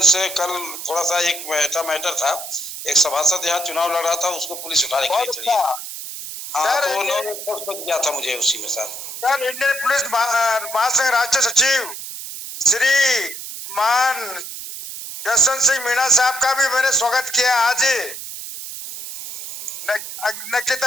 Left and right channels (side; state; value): right; noise; hiss, 9 dB below the sound